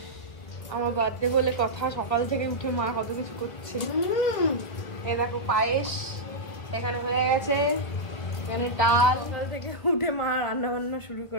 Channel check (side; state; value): right; late; 1.3 ms